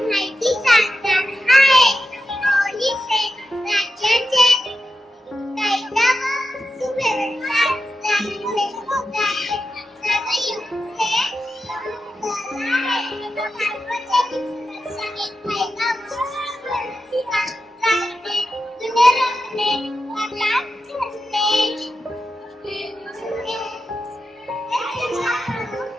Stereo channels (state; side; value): normal; both; correlation 0.89